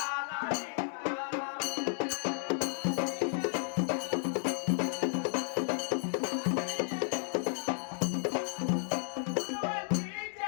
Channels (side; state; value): right; silent; digital silence